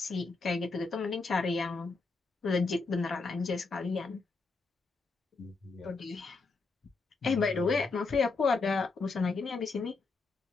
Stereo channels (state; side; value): quieter; right; 4.0 dB